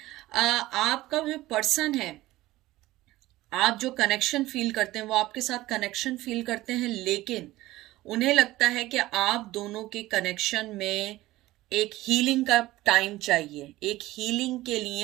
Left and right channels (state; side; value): quieter; left; 17.3 dB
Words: आपका जो पर्सन है, आप जो कनेक्शन फील करते हैं वो आपके साथ कनेक्शन फील करते हैं, लेकिन उन्हें लगता है कि आप दोनों के कनेक्शन में एक हीलिंग का टाइम चाहिए, एक हीलिंग के